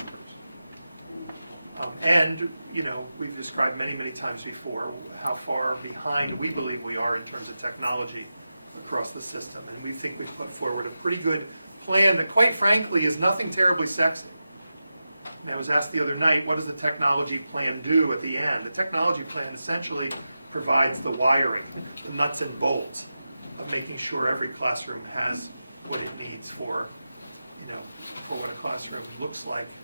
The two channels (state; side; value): inverted; both; correlation -0.92